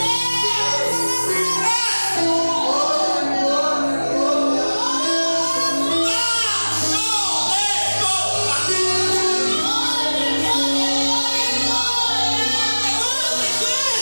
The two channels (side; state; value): both; inverted; correlation -1.00